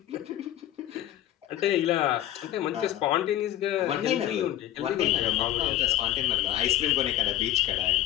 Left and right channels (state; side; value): quieter; right; 13.0 dB